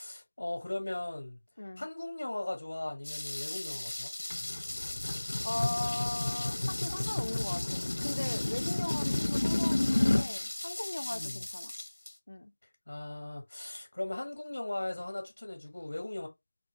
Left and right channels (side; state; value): both; inverted; correlation -1.00